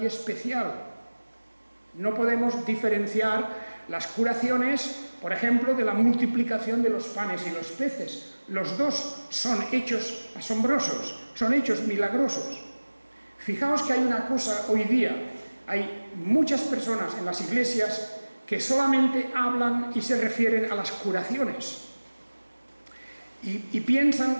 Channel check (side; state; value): both; inverted; correlation -1.00